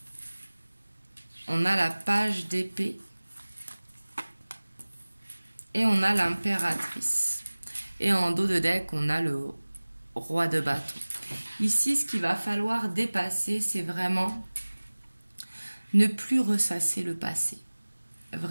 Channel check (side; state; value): both; inverted; correlation -1.00